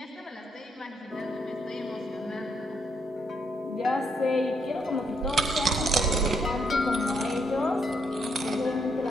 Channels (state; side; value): normal; both; correlation 0.75